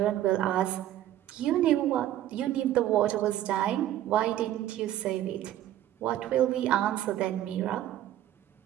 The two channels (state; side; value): quieter; left; 12.8 dB